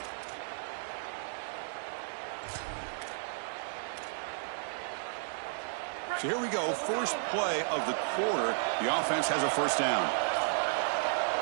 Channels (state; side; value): silent; left; digital silence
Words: So here we go, first play of the quarter. The offense has a first down.